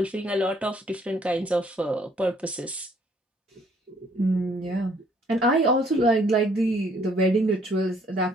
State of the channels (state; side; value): normal; both; correlation 0.63